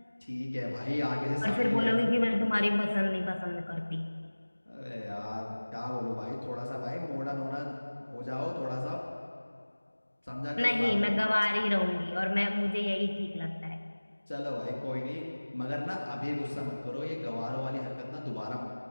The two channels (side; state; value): both; inverted; correlation -1.00